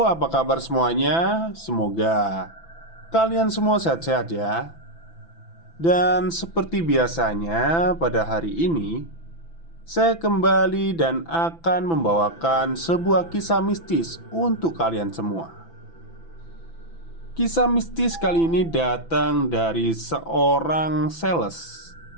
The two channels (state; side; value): late; right; 6.0 ms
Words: apa kabar semuanya? Semoga kalian semua sehat-sehat ya. Dan seperti biasanya pada hari ini saya kembali dan akan membawakan sebuah kisah mistis untuk kalian semua. Kisah mistis kali ini datang dari seorang sales